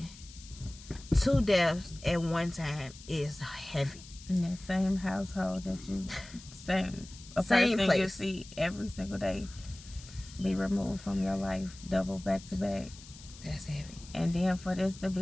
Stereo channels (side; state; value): left; noise; hiss, 18 dB below the sound